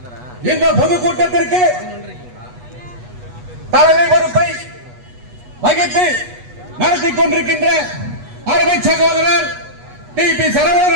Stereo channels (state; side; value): late; left; 8.2 ms